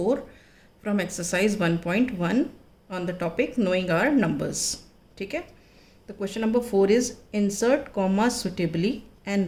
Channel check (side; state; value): both; identical; correlation 1.00